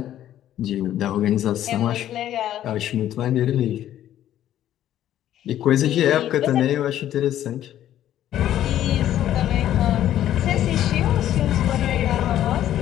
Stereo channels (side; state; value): right; quieter; 12.0 dB